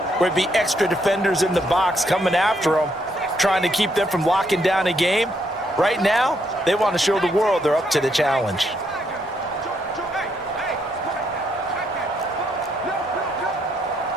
where it'd be extra defenders in the box coming after them, trying to keep them from locking down a game. Right now, they want to show the world they're up to the challenge.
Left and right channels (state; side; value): normal; both; correlation 0.74